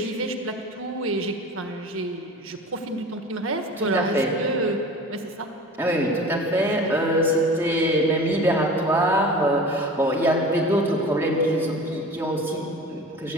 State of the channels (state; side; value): normal; both; correlation 0.38